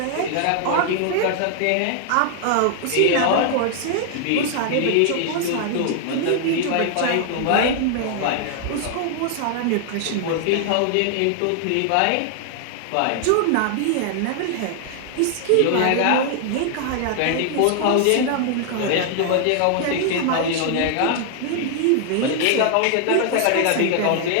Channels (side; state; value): both; different; correlation 0.00